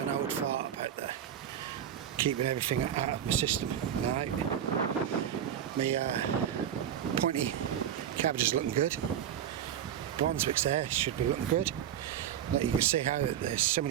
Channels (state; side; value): quieter; left; 9.8 dB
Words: old fart about that. Keeping everything out of my system. Now, my pointy cabbage is looking good. Brunswick's there, should be looking good. You can see how there's so